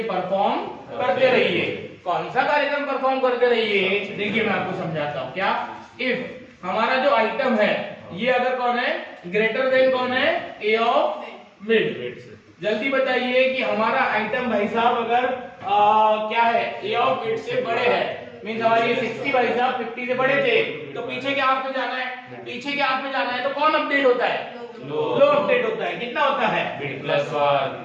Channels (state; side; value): identical; both; correlation 1.00